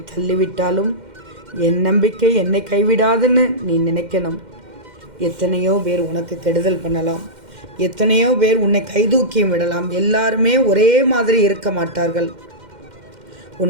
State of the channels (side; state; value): left; late; 2.1 ms